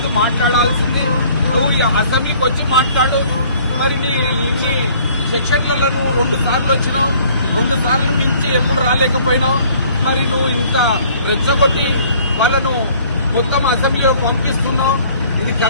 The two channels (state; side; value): inverted; both; correlation -0.56